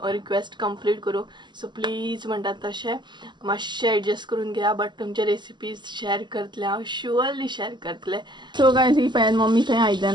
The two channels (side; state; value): left; late; 0.22 ms